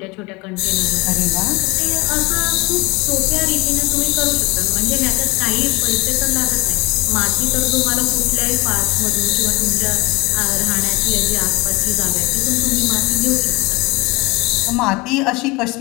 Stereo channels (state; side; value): quieter; right; 24.9 dB